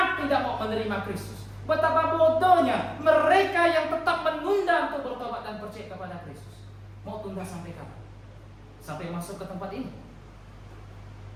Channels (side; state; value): both; identical; correlation 1.00